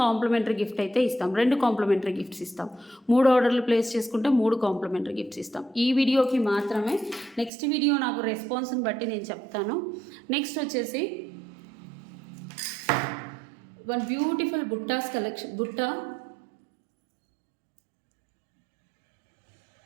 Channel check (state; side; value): drops out; left; at 7.5 s